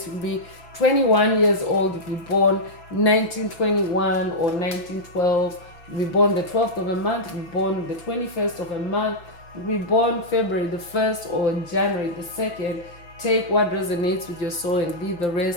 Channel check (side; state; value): right; late; 6.0 ms